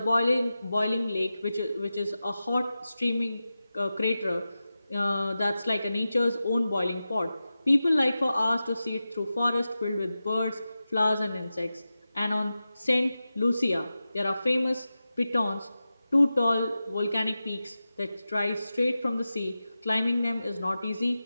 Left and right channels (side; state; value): both; inverted; correlation -0.93